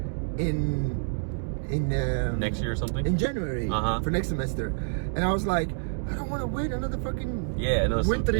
in next year or something? in January for next semester. And I was like, I don't want to wait another fucking winter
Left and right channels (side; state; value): left; silent; digital silence